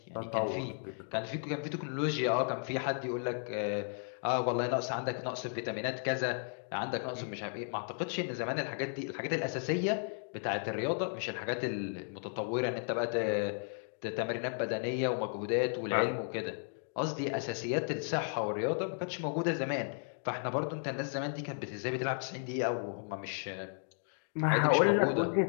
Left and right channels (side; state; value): right; silent; 55 dB below the other